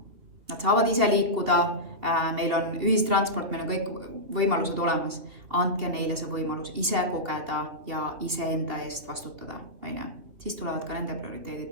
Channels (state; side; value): late; left; 3.1 ms